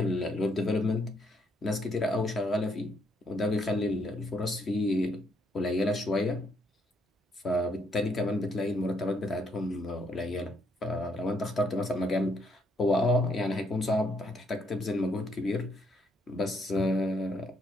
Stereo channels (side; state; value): both; normal; correlation 0.72